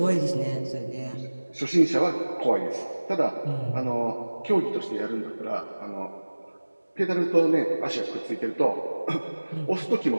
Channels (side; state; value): both; inverted; correlation -1.00